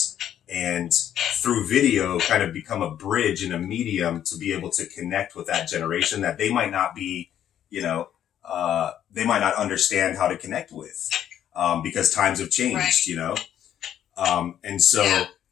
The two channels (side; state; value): right; quieter; 10.5 dB